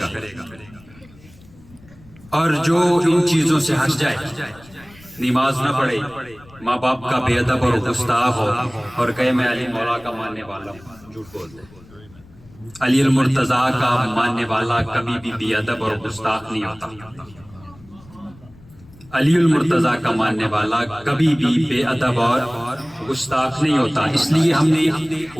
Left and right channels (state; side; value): noise; left; rumble, 24 dB below the sound